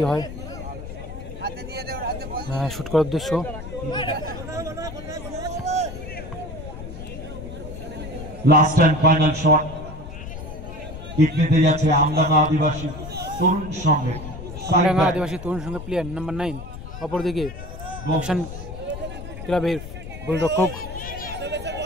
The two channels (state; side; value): noise; left; rumble, 11 dB below the sound